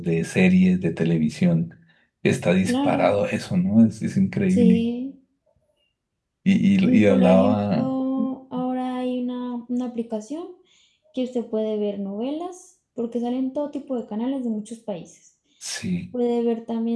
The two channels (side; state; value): both; identical; correlation 1.00